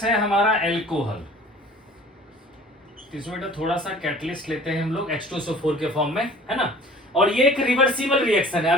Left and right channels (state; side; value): normal; both; correlation 0.48